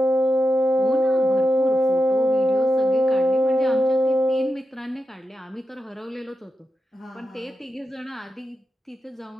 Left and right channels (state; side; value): normal; both; correlation 0.89